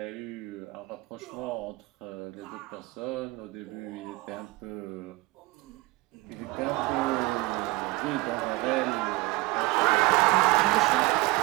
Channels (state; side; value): quieter; left; 22.4 dB